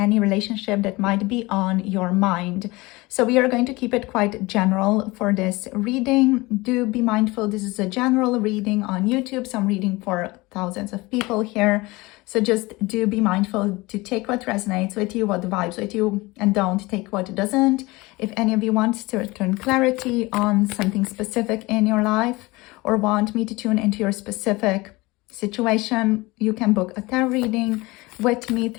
relationship that might be on your mind. So we are going to keep it quite general for this reading. Do be mindful, this is a general reading on YouTube, so I'm reading for thousands of people here. So just do be mindful to take what resonates with you, what vibes with you, and don't take what doesn't. If any of you want to return clarity on something specific in your life or want me to tune into your specific situation, you can book a tarot reading with me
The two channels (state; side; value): quieter; right; 22.3 dB